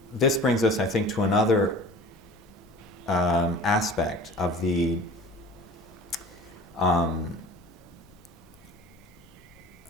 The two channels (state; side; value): normal; both; correlation 0.43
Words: this brings us, I think, to another aspect of the um,